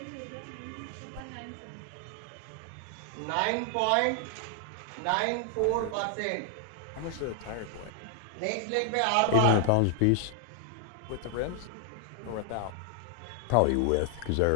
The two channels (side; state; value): both; different; correlation 0.00